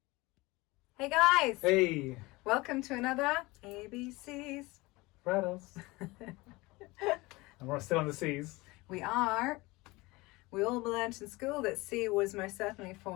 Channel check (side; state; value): right; quieter; 22.3 dB